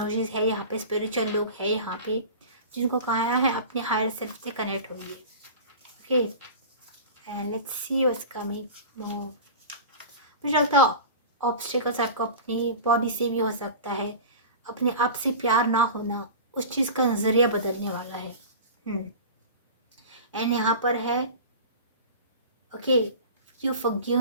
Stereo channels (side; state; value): both; inverted; correlation -0.34